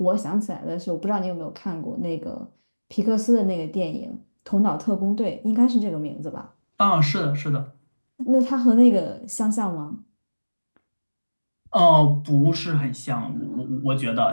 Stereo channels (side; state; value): both; inverted; correlation -1.00